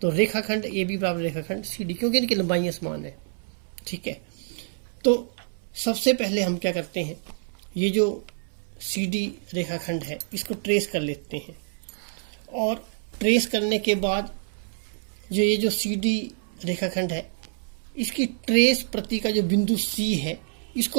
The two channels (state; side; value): silent; left; 60 dB below the other